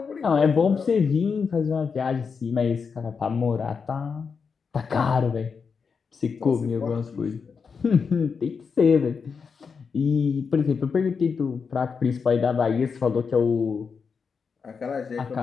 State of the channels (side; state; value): right; quieter; 5.7 dB